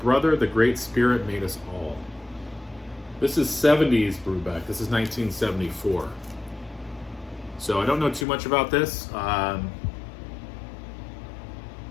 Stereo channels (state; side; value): drops out; right; at 8.2 s